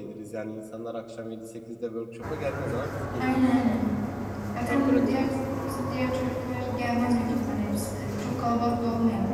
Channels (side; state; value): both; identical; correlation 1.00